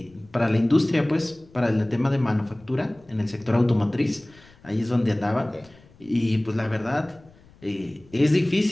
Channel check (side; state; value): left; noise; rumble, 26 dB below the sound